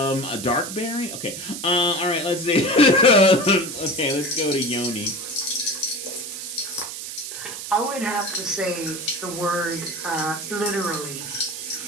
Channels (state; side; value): noise; right; hiss, 8 dB below the sound